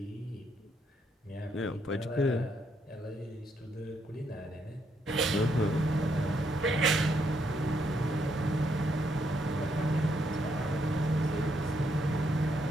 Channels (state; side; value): normal; both; correlation 0.75